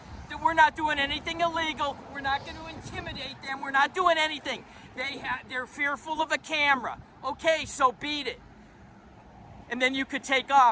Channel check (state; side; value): identical; both; correlation 1.00